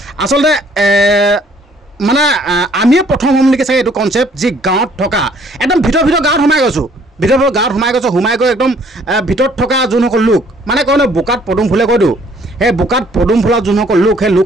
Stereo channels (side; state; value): both; normal; correlation 0.60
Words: আচলতে মানে আমিয়ে প্ৰথম হ'ম নেকি চাগে এইটো কনচেপ্ট যি গাঁৱত থকা একদম ভিতৰ গাঁৱত সোমাই গৈছোঁ সোমাই গৈ একদম ভিতৰত থকা যোনসকল লোক মানে কয় ন বোকাত পদুম ফুলে কৈ দিওঁ সেই বোকাত পদুম ফুলা যোনসকল লোক সেই